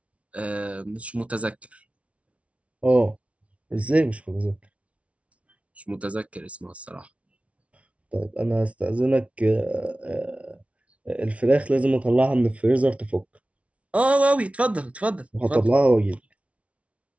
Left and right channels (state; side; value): late; left; 0.063 ms